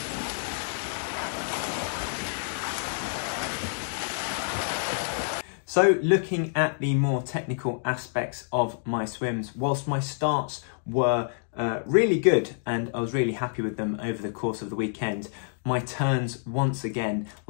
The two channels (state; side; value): silent; right; digital silence